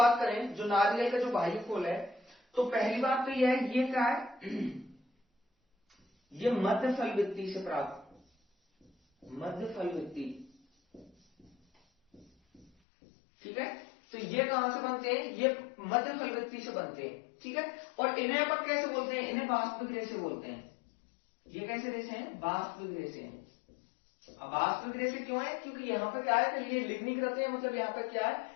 करें, जो नारियल का जो बाह्य खोल है, तो पहली बात तो यह है, ये क्या है, ये मध्य फल वृत्ति से प्राप्त, मध्य फल वृत्ति। ठीक है, तो ये कहां से बनते हैं, ये मध्य फल वृत्ति से बनते हैं। ठीक है, और इन्हें अपन कैसे बोलते हैं, इन्हें वास्तविक रेशे बोलते हैं। ये कैसे रेशे हैं, वास्तविक रेशे हैं। अब वास्तविक रेशे क्यों है, क्योंकि यहाँ पे क्या है कि ये लिग्निकृत है, मतलब यहाँ पे क्या है,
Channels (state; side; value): drops out; right; at 12.7 s